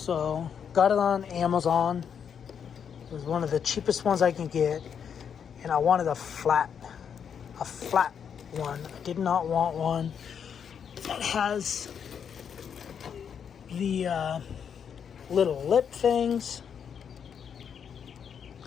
got it on Amazon. It was one of the cheapest ones I can get. And I wanted a flat one. I did not want one that has the little lip things,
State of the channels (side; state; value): right; quieter; 7.6 dB